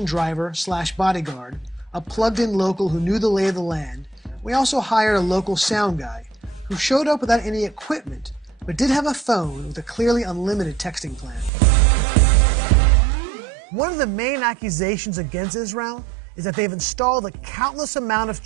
driver/bodyguard, a plugged-in local who knew the lay of the land. We also hired a local sound guy who showed up without any equipment, but did have a phone with a clearly unlimited texting plan. One of the main accusations against Israel is that they've installed a countless amount of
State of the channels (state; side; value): drops out; left; at 11.5 s